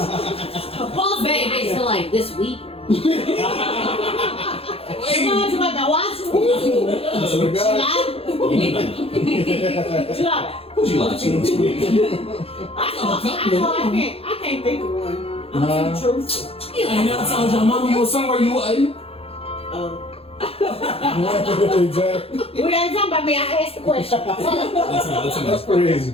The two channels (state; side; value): late; right; 0.28 ms